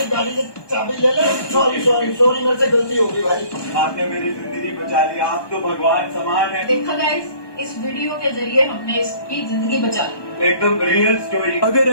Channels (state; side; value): late; right; 1.2 ms